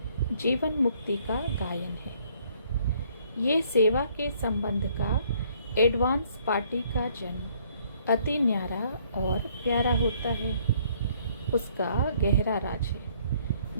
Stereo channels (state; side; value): inverted; both; correlation -0.63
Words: जीवन मुक्ति का गायन है। ये सेवा के संबंध का एडवांस पार्टी का जन्म अति न्यारा और प्यारा होता है। उसका गहरा राज है,